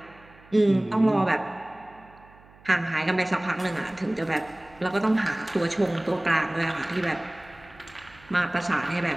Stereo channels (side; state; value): right; noise; hum, 25 dB below the sound